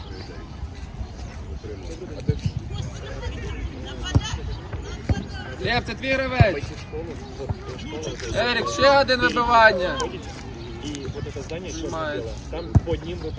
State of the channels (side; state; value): both; identical; correlation 1.00